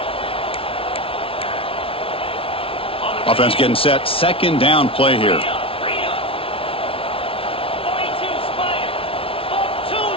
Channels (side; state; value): right; late; 0.26 ms